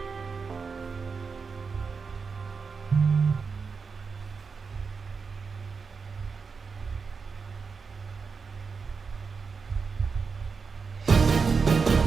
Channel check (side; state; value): left; quieter; 5.1 dB